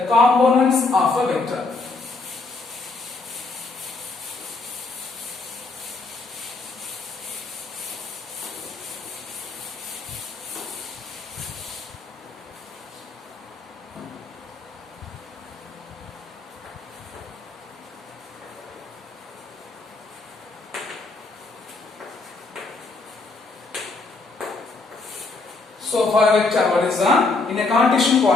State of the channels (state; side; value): quieter; right; 3.7 dB